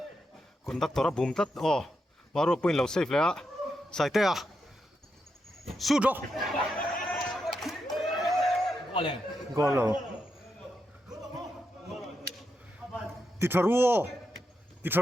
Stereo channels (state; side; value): normal; both; correlation 0.84